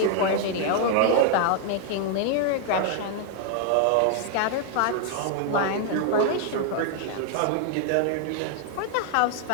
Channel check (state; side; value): different; both; correlation 0.00